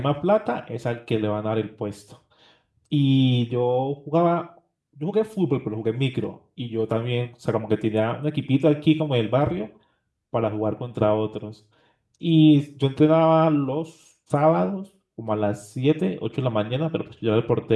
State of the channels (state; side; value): identical; both; correlation 1.00